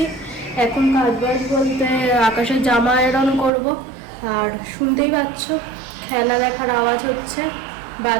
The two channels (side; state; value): left; drops out; at 3.5 s